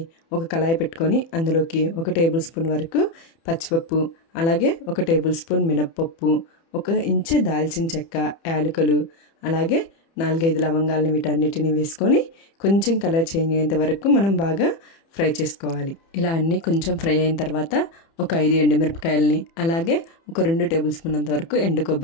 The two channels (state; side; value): late; right; 30 ms